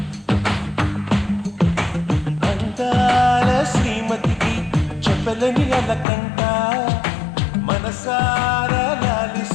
అందాల శ్రీమతికి చెప్పలేని అలకంట, మనసారా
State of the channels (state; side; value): drops out; right; at 6.1 s